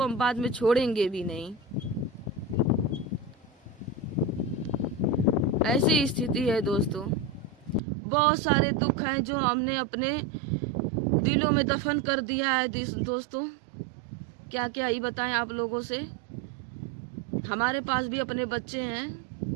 हम बाद में छोड़ेंगे भी नहीं। ऐसी स्थिति है दोस्तों। बहुत सारे दुख हैं जो हमने अपने दिलों में दफन कर दिया है दोस्तों। क्या क्या ही बताएं आप लोगों से। हमारे पास भी अपने बच्चे हैं।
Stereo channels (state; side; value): drops out; left; at 7.8 s